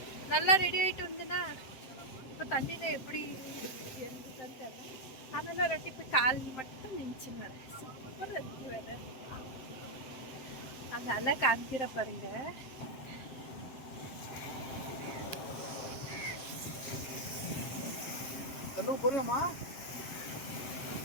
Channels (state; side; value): late; right; 7.7 ms